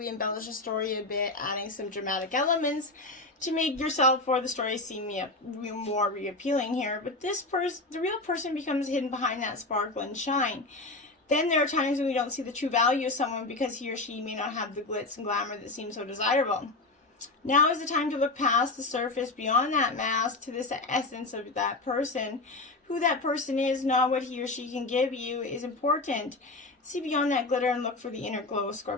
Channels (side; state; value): right; quieter; 3.1 dB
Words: embellish a story a bit, adding some dramatic elements to make yourself or the story seem more reappealing here. But the real person becomes hidden behind that sparkle and shine. Then there are times when we don't see the true value of someone because he or she may not have the glitz and glamour that seems so desirable. Now is the time to look past the surface, beyond that mask, to this essence of that person. Who that person is, not what he or she can give you, is important. See beyond that glitter and look for the inner glow,